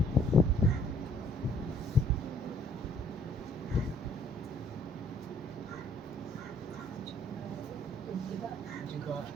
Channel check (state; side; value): normal; both; correlation 0.61